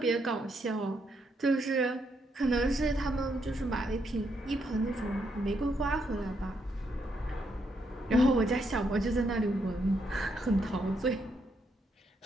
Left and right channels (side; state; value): both; normal; correlation 0.77